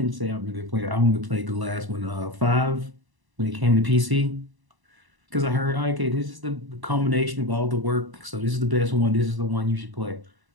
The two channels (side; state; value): left; late; 1.0 ms